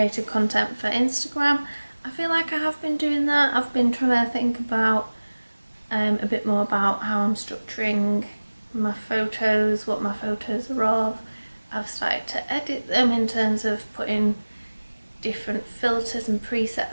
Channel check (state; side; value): inverted; both; correlation -1.00